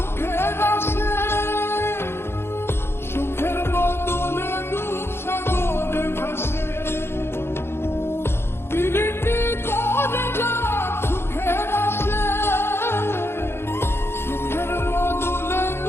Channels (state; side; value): late; right; 0.12 ms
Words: আসে, সুখের বদলে দুঃখ সাগরে ভাসে। পীড়িতি করে যারা সুখের আসে, সুখের বদলে